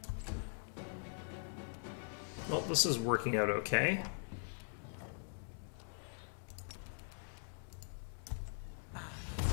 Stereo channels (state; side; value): silent; right; digital silence